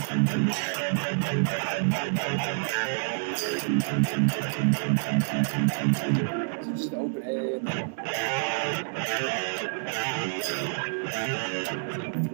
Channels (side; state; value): left; silent; digital silence